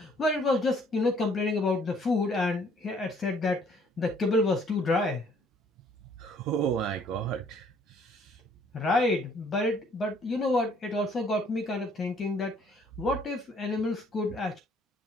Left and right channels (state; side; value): normal; both; correlation 0.61